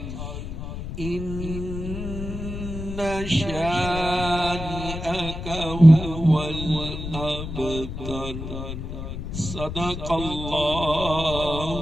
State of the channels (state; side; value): noise; left; rumble, 7 dB below the sound